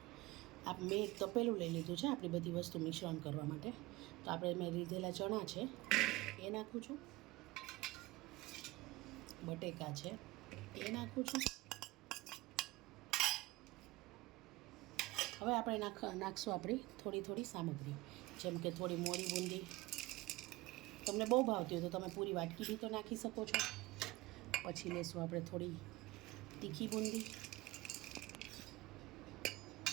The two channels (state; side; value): quieter; left; 20.6 dB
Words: મેં એક તપેલું લઈ લીધું છે આપણી બધી વસ્તુ મિશ્રણ કરવા માટે. તો આપણે મેં લીધેલા ચણા છે એ નાખું છું, બટેકા છે એ નાખું છું. હવે આપણે નાખશું આપણી થોડી સામગ્રી, જેમ કે થોડી મોળી બૂંદી. તમને બહુ ભાવતી હોય તો તમે પૂરી વાટકી બી તો નાખી શકો છો. પછી લેશું આપણે થોડી તીખી બૂંદી,